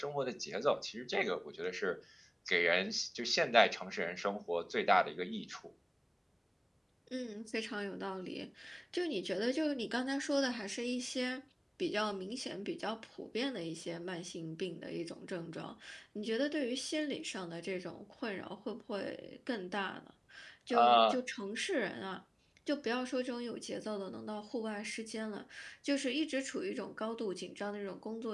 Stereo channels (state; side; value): identical; both; correlation 1.00